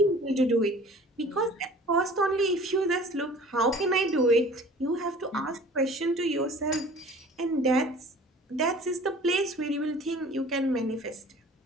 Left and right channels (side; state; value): both; normal; correlation 0.47